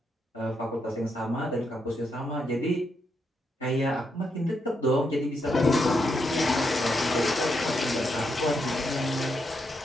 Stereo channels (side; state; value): both; normal; correlation 0.80